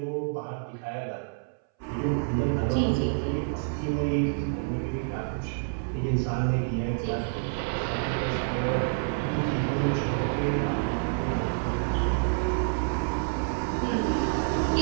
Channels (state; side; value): silent; left; 59 dB below the other